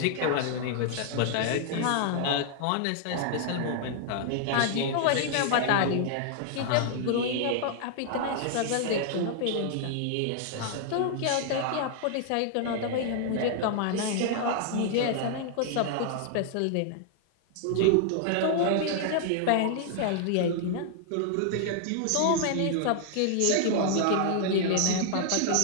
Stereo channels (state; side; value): different; both; correlation 0.00